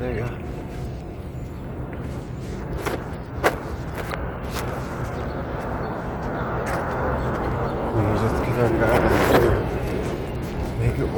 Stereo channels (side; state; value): both; identical; correlation 1.00